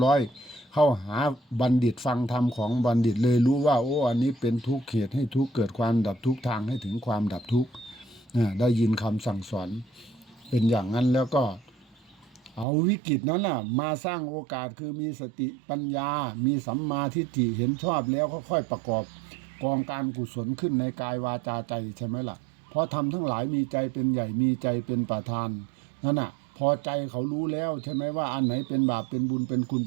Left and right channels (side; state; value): left; drops out; at 12.7 s